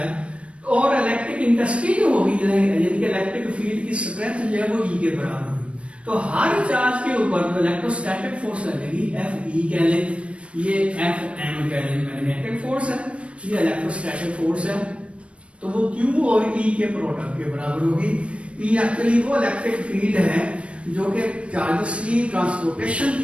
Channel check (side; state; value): left; late; 0.061 ms